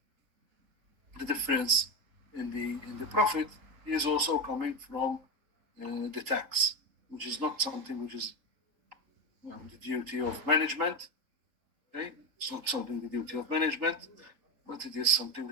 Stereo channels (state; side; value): late; left; 3.6 ms